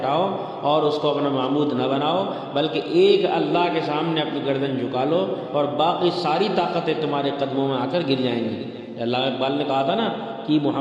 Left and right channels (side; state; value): both; identical; correlation 1.00